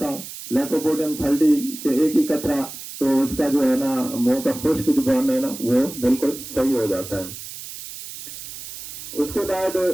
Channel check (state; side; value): noise; right; hiss, 12 dB below the sound